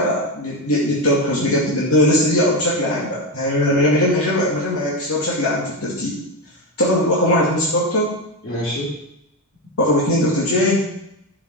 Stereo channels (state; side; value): normal; both; correlation 0.13